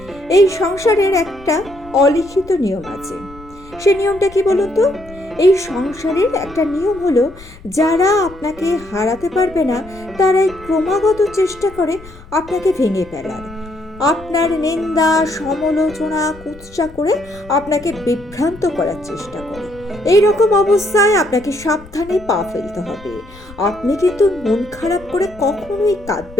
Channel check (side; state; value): left; noise; rumble, 20 dB below the sound